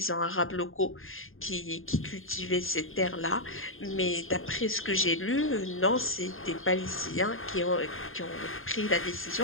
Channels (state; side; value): late; right; 0.60 ms